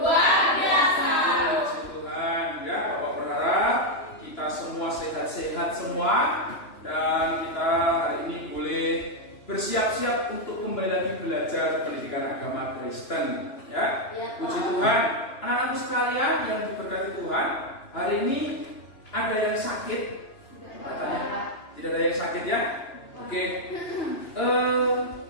biasa. Puji Tuhan, ya, Bapak berharap kita semua sehat-sehat semua dan kita hari ini boleh bersiap-siap untuk kembali lagi belajar pendidikan agama Kristen, ya. Puji Tuhan, anak-anakku sekalian yang diberkati Tuhan, hari ini ada yang sakit? Tidak ada yang sakit, ya? Oke.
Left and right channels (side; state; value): right; late; 2.9 ms